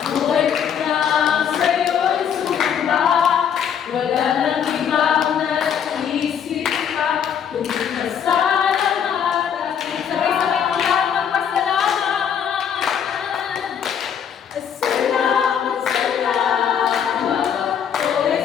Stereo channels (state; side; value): quieter; right; 8.1 dB